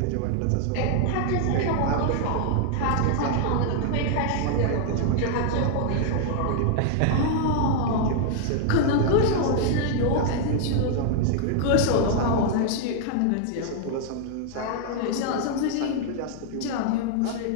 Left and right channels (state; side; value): different; both; correlation 0.00